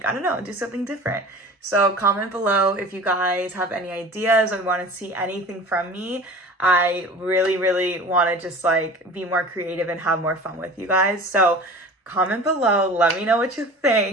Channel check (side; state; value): both; normal; correlation 0.40